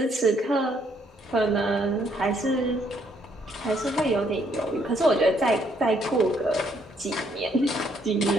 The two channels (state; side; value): normal; both; correlation 0.69